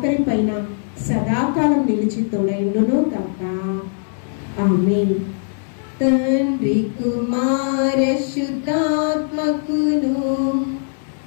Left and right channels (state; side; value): silent; right; digital silence